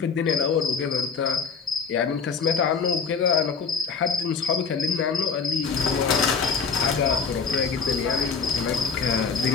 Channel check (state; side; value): quieter; right; 5.5 dB